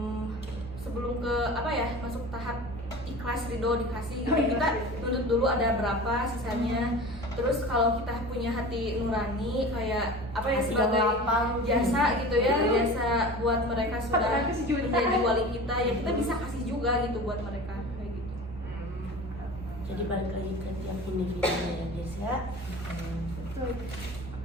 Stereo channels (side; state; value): both; normal; correlation 0.36